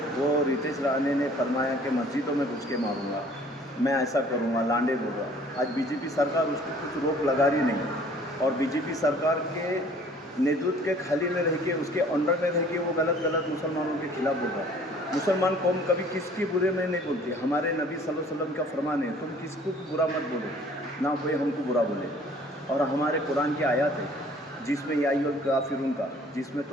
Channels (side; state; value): both; normal; correlation 0.54